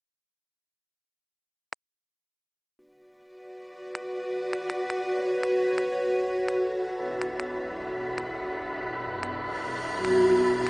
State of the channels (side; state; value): both; identical; correlation 1.00